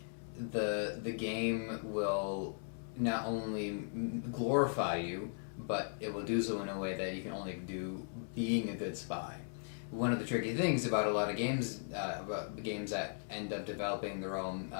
the game will not only glorify you, but it will do so in a way that you can only do being a good spy. One of the tricky things about a lot of games, about games that end up developing their own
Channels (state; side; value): silent; right; digital silence